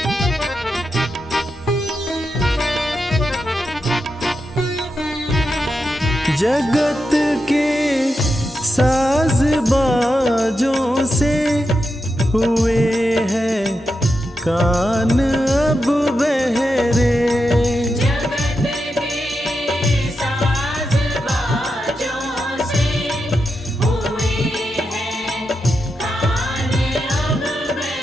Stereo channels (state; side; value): normal; both; correlation 0.87